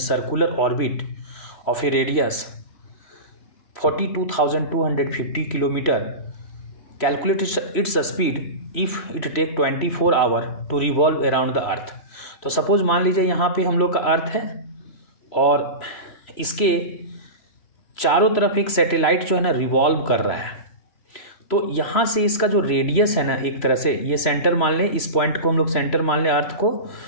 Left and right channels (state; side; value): late; right; 3.0 ms